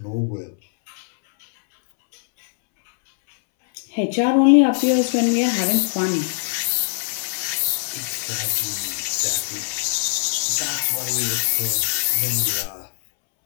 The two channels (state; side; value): silent; right; 65 dB below the other